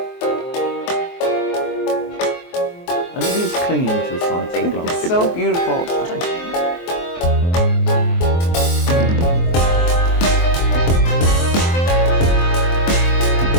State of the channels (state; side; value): late; right; 23 ms